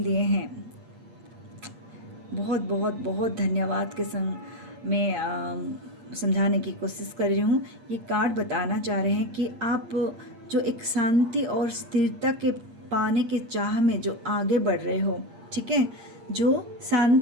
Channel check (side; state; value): left; late; 8.5 ms